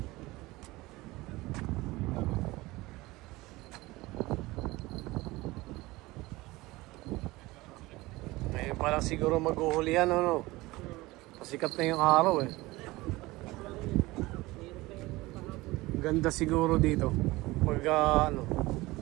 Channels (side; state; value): left; quieter; 20.3 dB